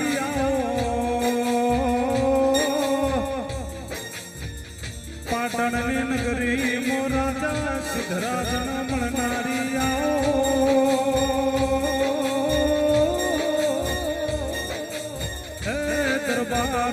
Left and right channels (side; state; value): both; identical; correlation 1.00